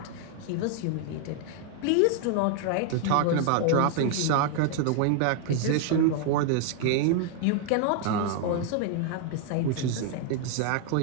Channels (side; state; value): both; different; correlation 0.00